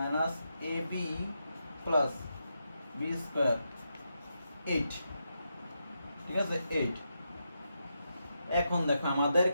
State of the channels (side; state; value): both; inverted; correlation -0.84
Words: A B plus b square 8, ঠিক আছে 8। এখন দেখো আমাদের